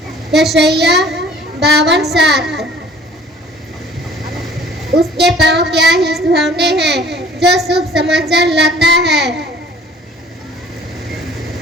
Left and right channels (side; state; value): both; normal; correlation 0.51